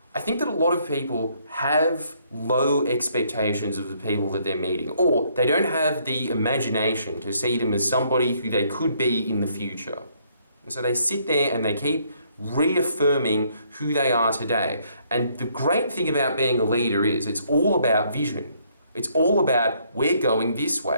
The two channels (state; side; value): inverted; both; correlation -0.68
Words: I think that a lot of people have low expectations of the people that they're meeting, or they don't have the imagination to see them as somebody who they could be in the future. And so they sit there and they keep reaffirming who they are today. And the great thing about being a leader is it's all about vision. It's all about, we're going this